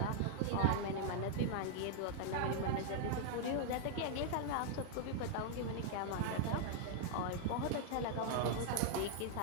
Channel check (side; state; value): both; different; correlation 0.00